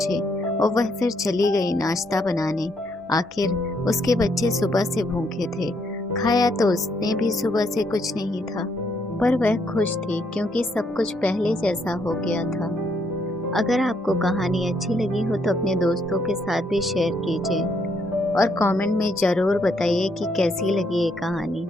और वह फिर चली गई नाश्ता बनाने। आखिर उसके बच्चे सुबह से भूखे थे। खाया तो उसने भी सुबह से कुछ नहीं था, पर वह खुश थी क्योंकि सब कुछ पहले जैसा हो गया था। अगर आपको कहानी अच्छी लगी हो तो अपने दोस्तों के साथ भी शेयर कीजिए और कमेंट में ज़रूर बताइए कि कैसी लगी ये कहानी।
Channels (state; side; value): normal; both; correlation 0.73